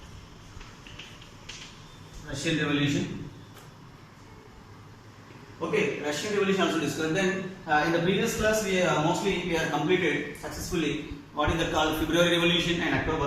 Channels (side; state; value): both; identical; correlation 1.00